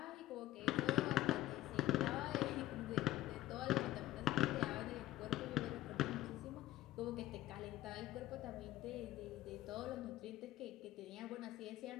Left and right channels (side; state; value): right; quieter; 15.1 dB